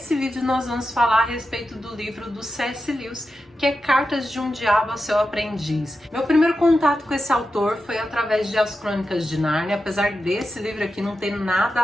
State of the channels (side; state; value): both; normal; correlation 0.90